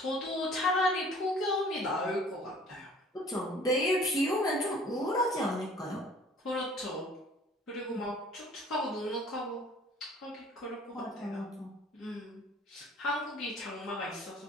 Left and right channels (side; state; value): both; normal; correlation 0.52